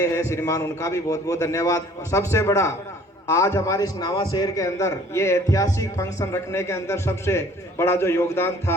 हैं श्रीमान, उनका भी बहुत बहुत धन्यवाद। और सबसे बड़ा आज हमारे इस नावा शहर के अंदर ये ऐतिहासिक फंक्शन रखने के अंदर सबसे बड़ा जो योगदान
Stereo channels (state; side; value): normal; both; correlation 0.54